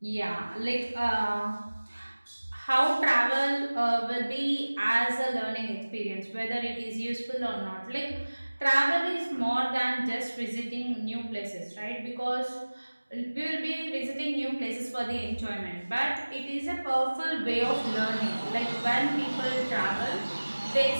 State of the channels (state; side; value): inverted; both; correlation -1.00